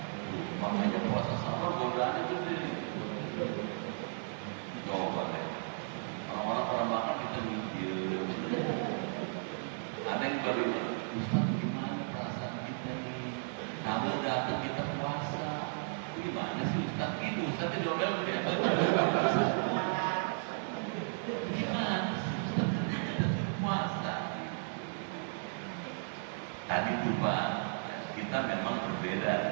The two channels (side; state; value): left; silent; digital silence